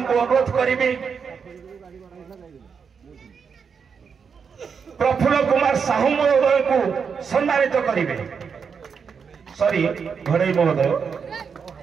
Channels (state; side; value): quieter; left; 6.2 dB